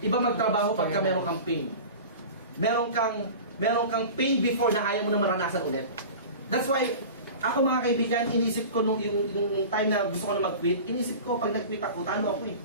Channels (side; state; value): both; inverted; correlation -0.35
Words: Iba magtrabaho pagka meron kang pain. Meron kang pain before na ayaw mo na maranasan ulit. That's why, ako mga kaibigan, inisip ko yung time na gusto ko na mag-quit, inisip ko pag nag-quit ako, talo ako eh.